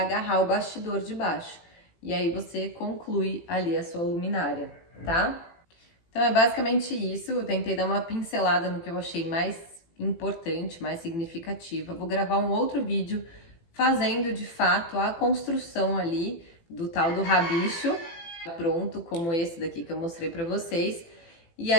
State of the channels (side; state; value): right; late; 18 ms